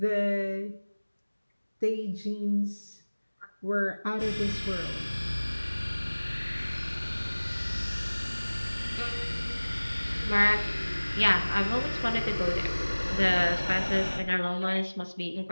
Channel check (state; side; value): inverted; both; correlation -1.00